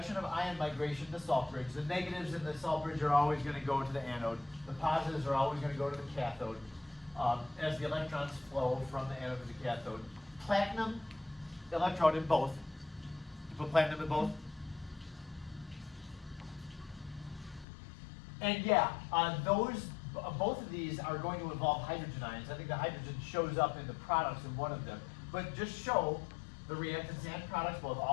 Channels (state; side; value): drops out; right; at 17.7 s